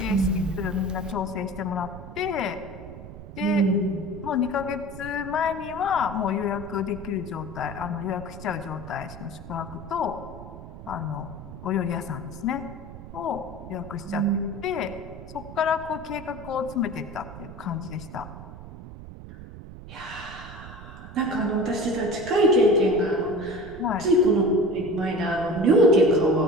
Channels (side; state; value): right; noise; rumble, 14 dB below the sound